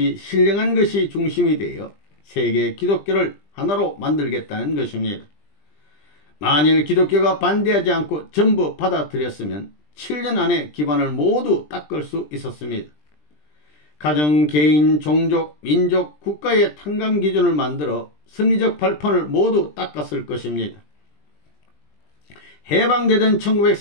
신령한 것이 중심이 되어 세계 기독교를 하나로 만들겠다는 것입니다. 만일 기독교가 반대하지 않고 전부 받아들였으면 7년 안에 기반을 모두 닦을 수 있었습니다. 가정, 개인, 종족, 민족, 국가의 탕감 기준을 만들어 승리적 발판을 모두 닦았을 것입니다. 해방되던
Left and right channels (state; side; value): late; right; 20 ms